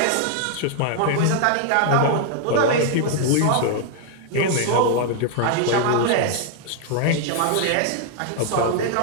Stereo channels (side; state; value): both; different; correlation 0.00